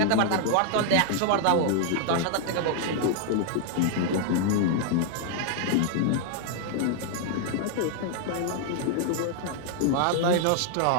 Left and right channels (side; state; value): both; different; correlation 0.00